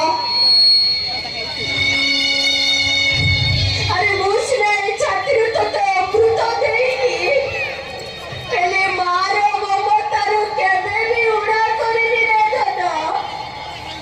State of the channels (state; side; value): identical; both; correlation 1.00